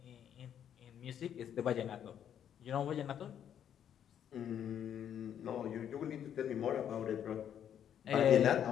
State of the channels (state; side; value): quieter; right; 9.4 dB